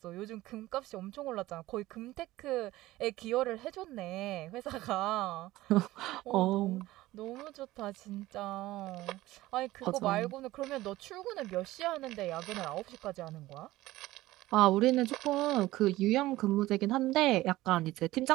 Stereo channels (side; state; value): left; quieter; 17.2 dB